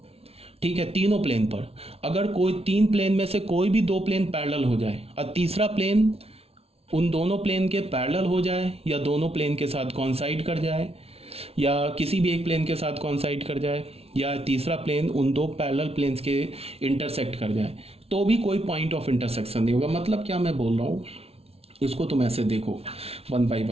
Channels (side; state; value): left; late; 0.30 ms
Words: ठीक है। तीनों प्लेन पर अगर कोई तीन प्लेन में से कोई भी दो प्लेन पैरेलल हो जाए और तीसरा प्लेन उन दोनों प्लेन के पैरेलल हो जाए या दोनों प्लेन के साथ कॉन्साइड कर जाए या किसी भी एक प्लेन के साथ कॉन्साइड कर जाए या तीसरा प्लेन उन दो पैरेलल प्लेन्स के इंटरसेक्ट कर जाए, तो भी कोई पॉइंट ऑफ इंटरसेक्शन नहीं होगा। मतलब क्या मैं बोल रहा हूँ, इसको तुम ऐसे देखो one by